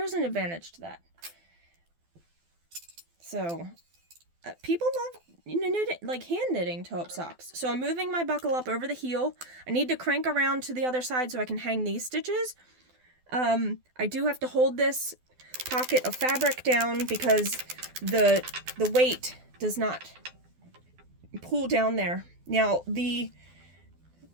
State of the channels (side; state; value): left; late; 12 ms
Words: an advantage to that. So, people love knitting, like hand knitting toe-up socks. So I'm moving my buckle up over the heel. I need to crank around to the other side so I can hang these stitches. I do have to hold this pocket of fabric down because the weight does not pull down there. Now, the